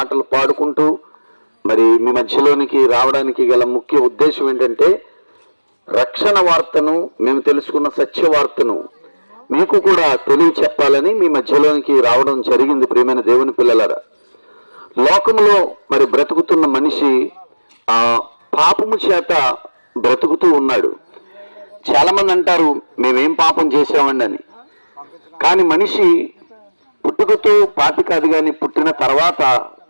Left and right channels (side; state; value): both; inverted; correlation -1.00